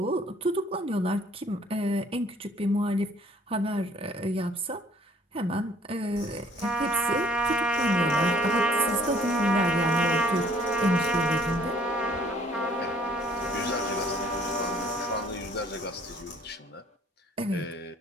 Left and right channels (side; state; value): both; normal; correlation 0.58